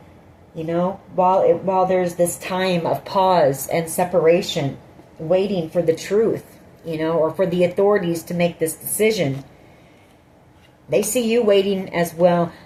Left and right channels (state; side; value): identical; both; correlation 1.00